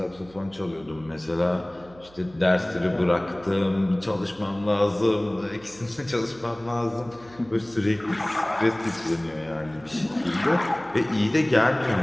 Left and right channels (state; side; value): noise; right; hum, 24 dB below the sound